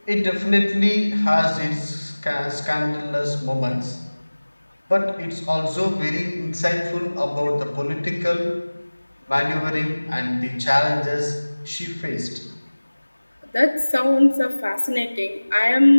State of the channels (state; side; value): inverted; both; correlation -1.00